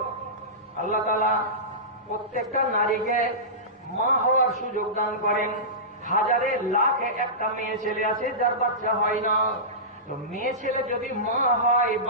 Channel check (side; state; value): both; normal; correlation -0.19